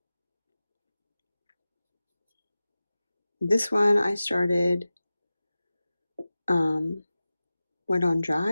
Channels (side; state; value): both; inverted; correlation -0.96